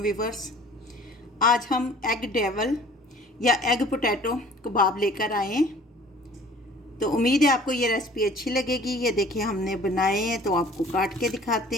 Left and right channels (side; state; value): both; normal; correlation 0.50